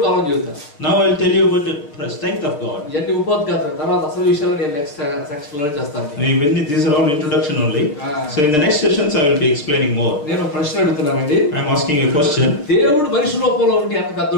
బలం చెబుతాను. Now I will tell you about the strength of God. ఇవన్నీ ఉపోద్ఘాతం, తర్వాత అసలు విషయాలు నేను నెక్స్ట్ సెక్షన్ లో చేస్తాను. These are all introduction only. So in the next sessions I will be explaining more. నేను ప్రశ్న అడుగుతున్నానండి. I am asking you a question. దేవుడు మనిషి రూపంలో ఉండి ఎంత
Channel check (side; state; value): right; late; 6.6 ms